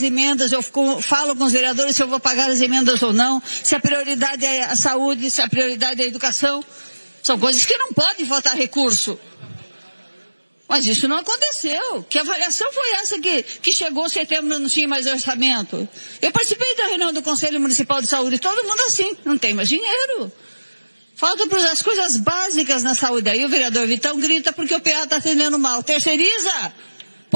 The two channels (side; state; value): both; inverted; correlation -1.00